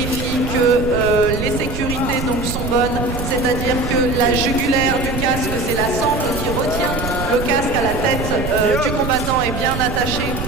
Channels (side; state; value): right; noise; rumble, 5 dB below the sound